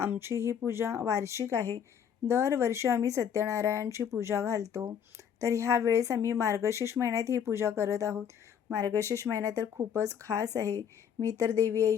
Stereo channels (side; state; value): right; quieter; 8.2 dB